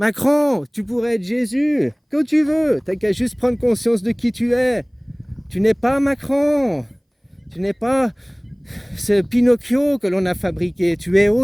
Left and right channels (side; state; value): both; identical; correlation 1.00